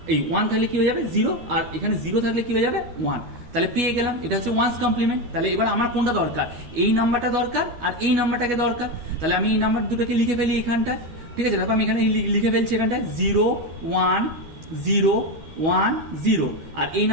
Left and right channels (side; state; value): left; late; 12 ms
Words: এই 1 থাকলে কি হয়ে যাবে 0, আর এখানে 0 থাকলে কি হয়ে যাবে 1। তাহলে পেয়ে গেলাম, এটা হচ্ছে ওয়ান্স কমপ্লিমেন্ট। তাহলে এবার আমার কোনটা দরকার, এই নাম্বারটা দরকার আর এই নাম্বারটাকে দরকার। তাহলে আমি এই নাম্বার দুটোকে লিখে ফেলি এখানটা, ঠিক আছে। দেখো আমি এখানে লিখে ফেলছি এখানটায় 0 1 0 1 0, আর এই